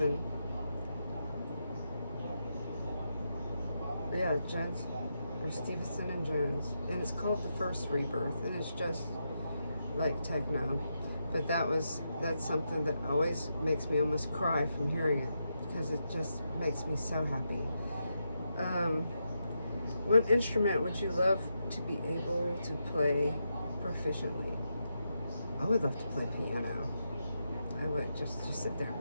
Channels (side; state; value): both; inverted; correlation -0.84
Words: Yeah, Jones, or Stevenson and Jones, and it's called The First Rebirth, and it's just like techno. But that's something that always makes me almost cry from hearing it, because it just makes me so happy. What instrument would you love to be able to play proficiently? I would love to play piano. I would just sit there.